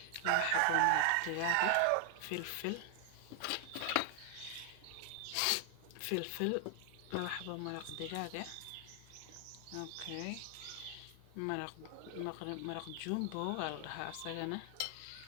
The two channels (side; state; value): both; different; correlation 0.00